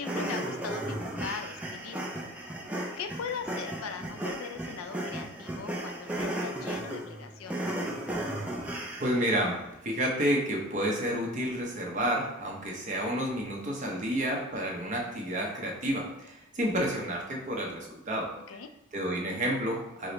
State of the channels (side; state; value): both; normal; correlation 0.41